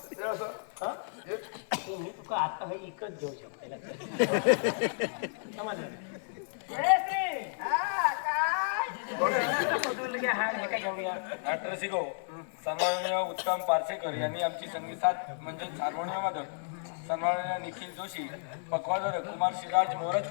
हे असं हं? ते मी तुका आता हे इकत घेऊ शकते समजलं जयश्री. हा, काय? कुठून घ्या, हा हे काय घेऊया. डॉक्टर सिगो सन्माननीय उत्तम पार्सेकर यांनी आमची संगीतात म्हणजे हार्मोनियममध्ये सन्माननीय निखिल जोशी, पकवाजर कुमार शिराज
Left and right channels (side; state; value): right; silent; 55 dB below the other